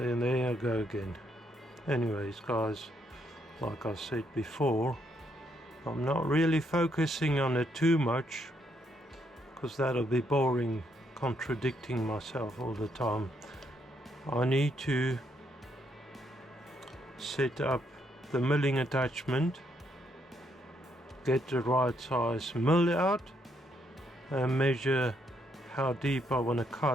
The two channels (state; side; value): normal; both; correlation 0.75